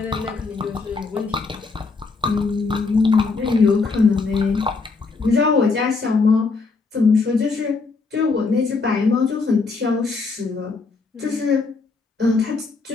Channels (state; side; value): quieter; right; 4.2 dB